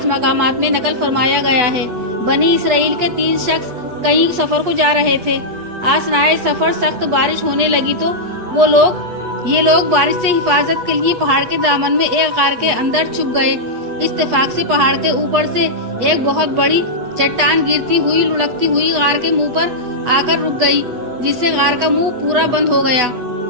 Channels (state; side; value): late; left; 8.1 ms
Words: मकामात में नकल फरमाया गया है। बनी इसराइल के 3 शख्स कहीं सफर को जा रहे थे। आसनाए सफर सख्त बारिश होने लगी तो ये लोग बारिश से हिफाजत के लिए पहाड़ के दामन में एक गार के अंदर छुप गए। इत्तेफाक से पहाड़ के ऊपर से एक बहुत बड़ी चट्टान गिरती हुई लुढ़कती हुई गार के मुंह पर आकर रुक गई, जिससे गार का मुंह पूरा बंद हो गया।